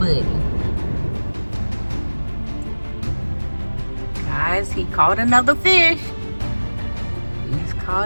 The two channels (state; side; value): inverted; both; correlation -1.00